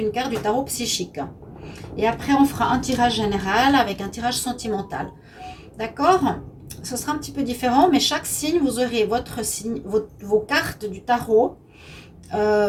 carte du tarot psychique. Et après on fera un tirage général avec un tirage sentimental. D'accord? Ce sera un petit peu différent, mais chaque signe, vous aurez votre signe, vos cartes du tarot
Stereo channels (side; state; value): both; identical; correlation 1.00